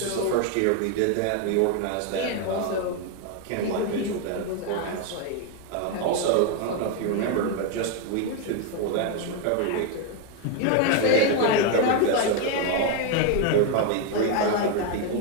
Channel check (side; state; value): both; different; correlation 0.01